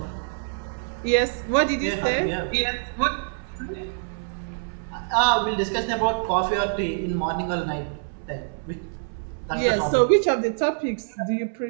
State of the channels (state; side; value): silent; left; 62 dB below the other